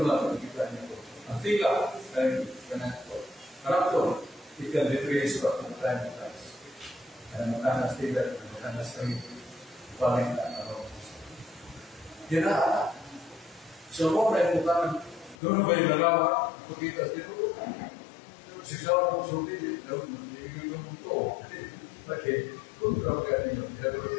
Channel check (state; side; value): drops out; right; at 15.4 s